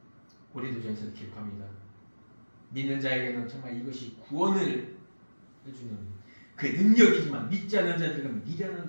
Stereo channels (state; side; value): inverted; both; correlation -1.00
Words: 고린도전서에서 기록합니다. 믿는 자에게는 정말 이것이 구원을 해주는 그 능력이지만 믿지 않는 자들은 미련한